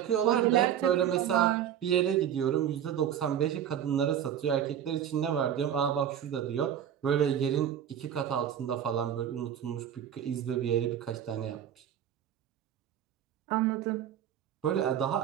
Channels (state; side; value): quieter; left; 9.7 dB